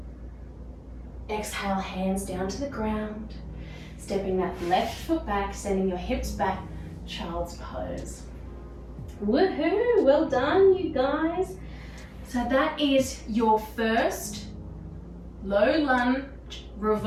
Exhale, hands down to the ground. Stepping that left foot back, sending your hips back, child's pose. Woohoo! Well done, you guys. So that is your first low lunge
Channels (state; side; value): identical; both; correlation 1.00